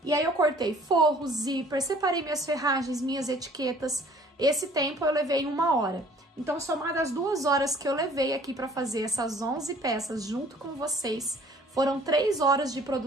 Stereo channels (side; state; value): both; normal; correlation 0.54